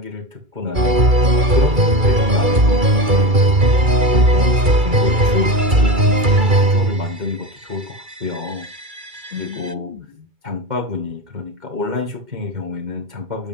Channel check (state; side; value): late; left; 2.3 ms